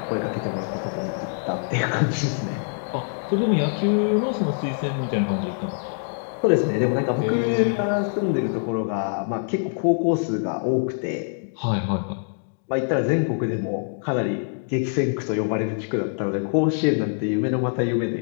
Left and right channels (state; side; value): silent; right; digital silence